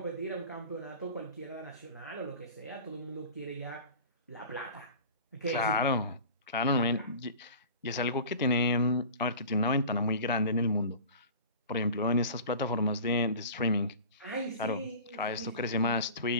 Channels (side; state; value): both; inverted; correlation -0.38